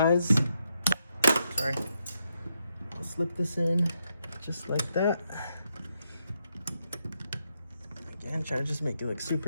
Sorry. I'll slip this in just like that. Again, try to just make it look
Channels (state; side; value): inverted; both; correlation -0.81